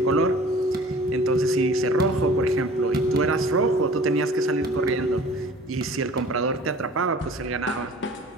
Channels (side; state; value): both; normal; correlation 0.47